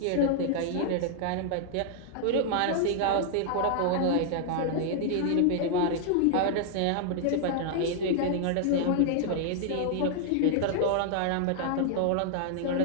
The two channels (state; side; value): different; both; correlation -0.01